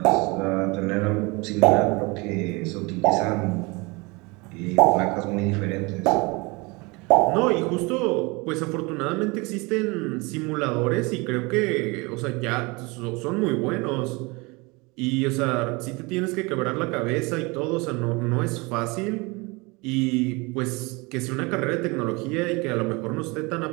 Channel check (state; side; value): quieter; left; 26.3 dB